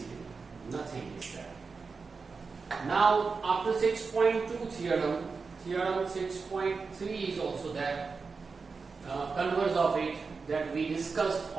Nothing is there. Now after 6.2 theorem, theorem 6.3 is also there. Converse of it that we discussed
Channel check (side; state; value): left; quieter; 4.7 dB